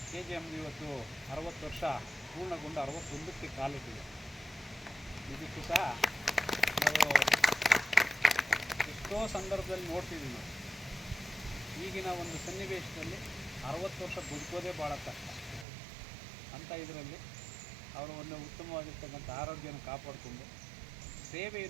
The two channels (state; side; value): drops out; left; at 15.7 s